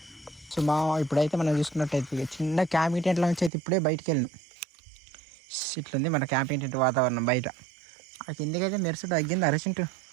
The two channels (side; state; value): left; drops out; at 3.5 s